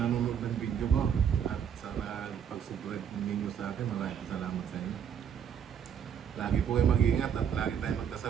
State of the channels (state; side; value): quieter; left; 8.2 dB